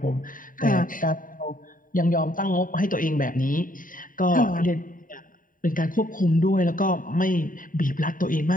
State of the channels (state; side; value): late; right; 0.39 ms